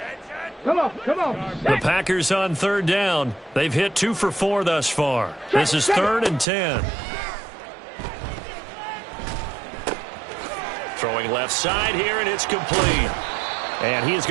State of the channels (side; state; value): left; drops out; at 6.5 s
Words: Come on, come on. The Packers on third down. They've hit 2 for 4 thus far. This is 3rd and 10. Throwing left side here, and it's complete. And he is